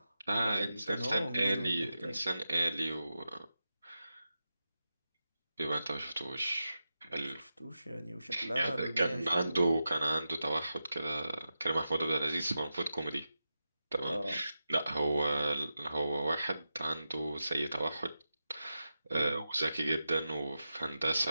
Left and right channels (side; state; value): both; inverted; correlation -0.90